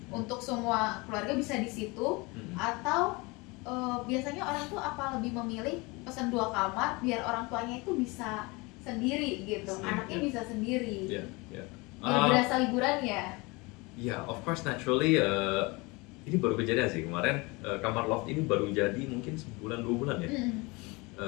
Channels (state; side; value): quieter; right; 25.6 dB